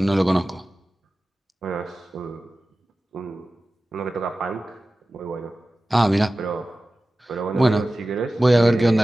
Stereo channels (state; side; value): normal; both; correlation 0.96